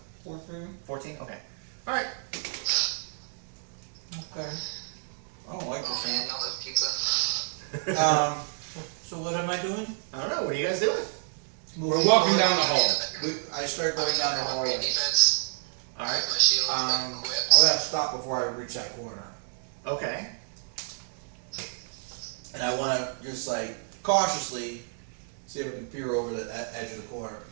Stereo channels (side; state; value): left; silent; digital silence